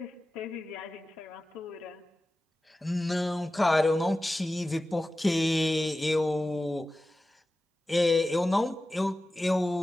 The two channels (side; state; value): both; normal; correlation 0.95